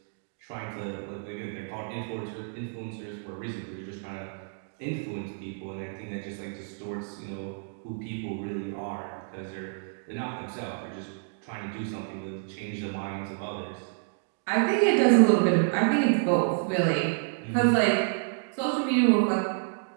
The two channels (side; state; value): left; silent; digital silence